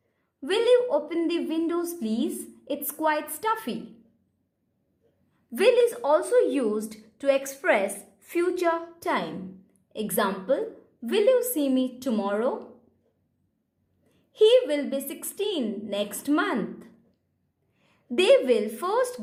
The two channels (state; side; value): identical; both; correlation 1.00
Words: Will you open the windows please? It's quite stuffy. Will is also used to express future time. Example, will you see me tomorrow? He will be 16 next month. They will